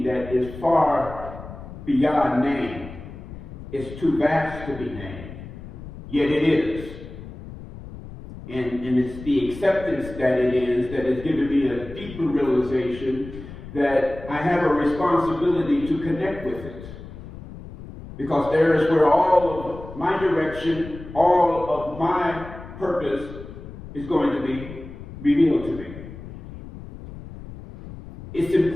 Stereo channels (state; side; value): noise; left; rumble, 14 dB below the sound